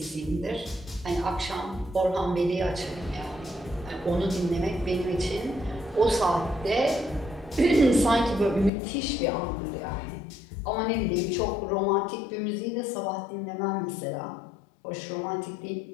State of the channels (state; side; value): drops out; right; at 8.7 s